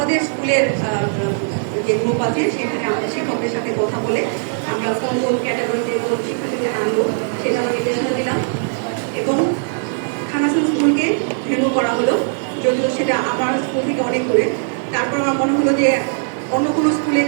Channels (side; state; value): left; silent; 66 dB below the other